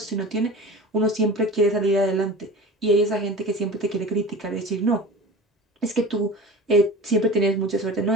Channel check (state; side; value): normal; both; correlation 0.36